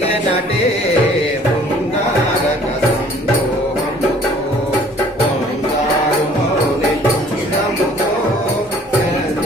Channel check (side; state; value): both; normal; correlation 0.55